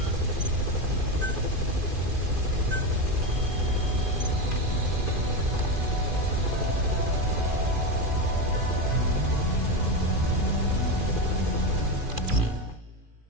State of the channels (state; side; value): late; left; 2.5 ms